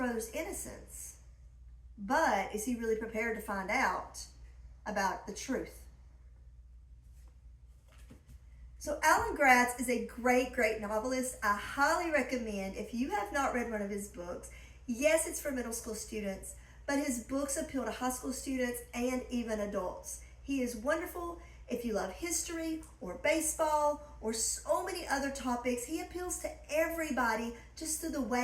innocence. But is he really prepared to find out about the truth? So Alan Gratz is a great, great novelist. I highly recommend, if you have not read one of his books, yes, it's for middle school students, but his books appeal to high school students and even adults. He is wonderful. If you love history or baseball or so many other topics, he appeals to everybody just through the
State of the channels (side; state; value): both; identical; correlation 1.00